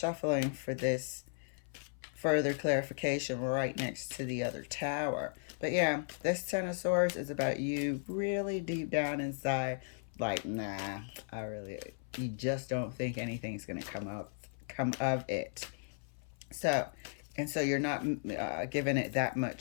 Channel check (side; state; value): right; silent; 54 dB below the other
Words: for this further clarification right next to the other tower. But yeah, this Ten of Swords is about you really deep down inside, like, nah, you just don't think anything's going to come of it. So you're not giving it that